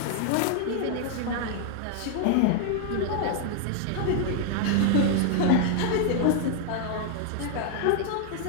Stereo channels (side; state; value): both; different; correlation 0.00